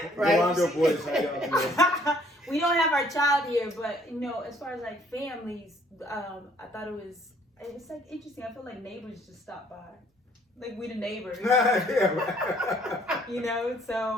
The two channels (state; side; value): normal; both; correlation 0.61